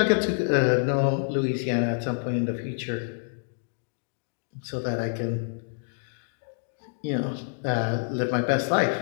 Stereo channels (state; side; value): silent; right; digital silence